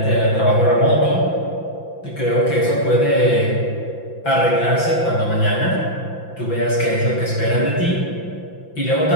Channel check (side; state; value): right; late; 5.9 ms